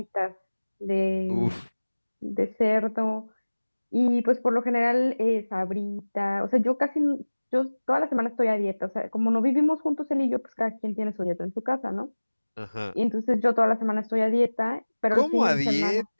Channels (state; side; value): inverted; both; correlation -1.00